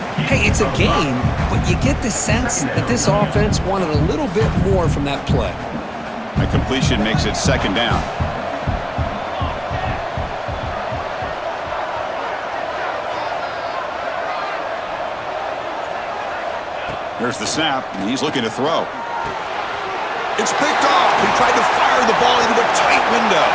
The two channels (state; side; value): identical; both; correlation 1.00